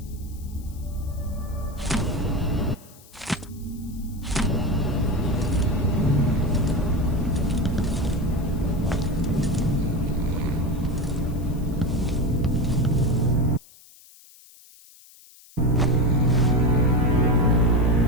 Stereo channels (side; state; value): left; noise; hiss, 24 dB below the sound